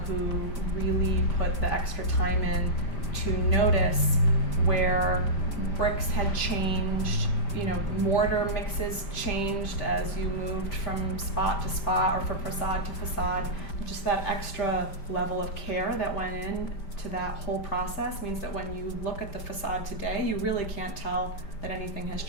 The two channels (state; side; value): late; right; 5.1 ms